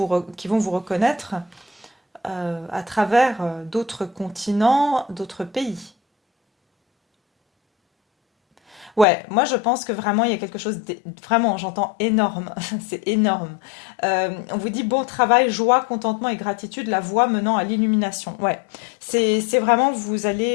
reconnaître à travers d'autres continents, d'autres pays. Ouais, moi je pense que vraiment il y a quelque chose vraiment, j'entends énorme, c'est énorme. On vous dit bon travail, joie, contentement et gratitude, la voie menant à l'illumination. Ouais, c'est vraiment vous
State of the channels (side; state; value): right; drops out; at 9.1 s